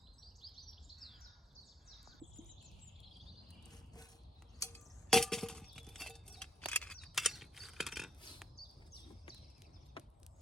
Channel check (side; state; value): both; normal; correlation 0.76